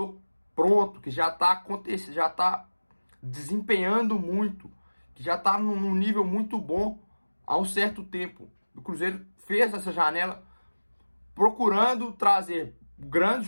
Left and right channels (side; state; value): both; inverted; correlation -1.00